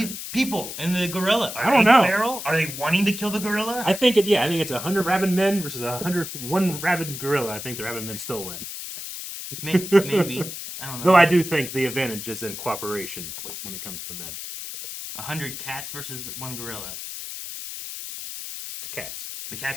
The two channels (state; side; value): noise; left; hiss, 8 dB below the sound